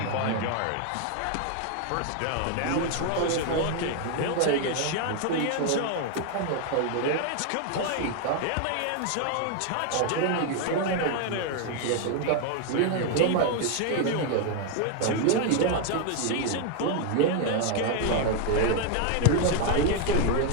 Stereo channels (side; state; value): both; different; correlation 0.01